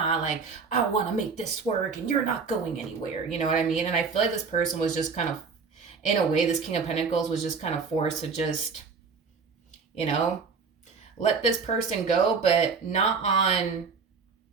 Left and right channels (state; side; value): quieter; left; 5.1 dB